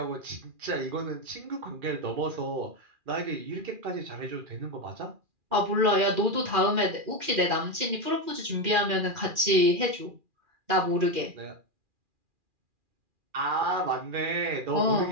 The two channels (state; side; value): late; left; 2.4 ms